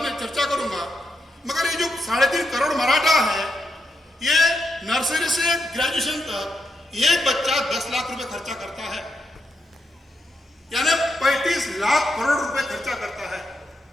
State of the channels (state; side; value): normal; both; correlation 0.83